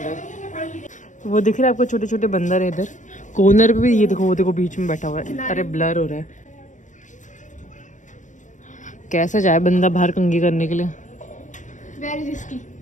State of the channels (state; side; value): late; right; 0.36 ms